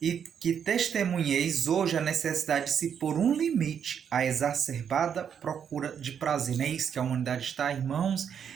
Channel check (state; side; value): quieter; left; 7.9 dB